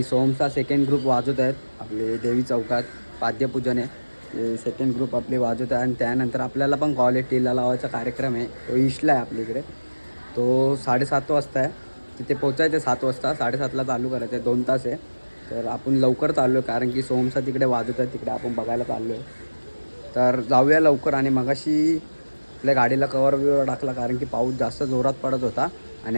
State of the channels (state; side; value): inverted; both; correlation -1.00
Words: सोमचा सेकंड ग्रुप वाजवत आहेत आपले देवी चौकात. पाद्यपूजन आहे. सेकंड ग्रुप आपले वाजवत आहे. आणि त्यानंतर आपल्याला पण कॉलेज टीला लावायचा कार्यक्रम आहे. तो ईशला आहे आपल्याकडे. तो 7:30 वाजता आहे. तिथे पोचायचं आहे 7 वाजता. 7:30ला चालू करायचं आहे. 2 तास आहे. तर आपण लवकर चाललो आहे, कारण की सोमचा तिकडे वाजवत आहे, तिकडे आपण बघायला चाललो आहे. तर जाऊया लवकर. आणि मगाशी आपल्या गाडीला कवर बिवर टाकला, कारण की पाऊस जास्त जोरात पडत होता. आणि